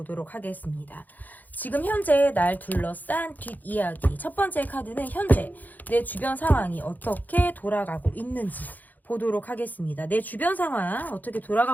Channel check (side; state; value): right; late; 0.083 ms